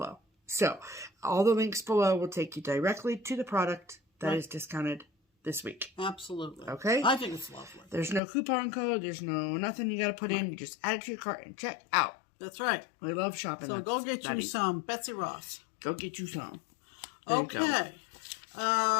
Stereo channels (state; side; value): drops out; right; at 8.2 s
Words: So all the links below will take you directly to the product that is discounted this week. Absolutely. Okay? I think it's lovely. There's no coupon code. There's no nothing you got to put in. You just add it to your cart and check out. That's right. We love shopping. So go get you some Betsy Ross. Go get you some. There okay.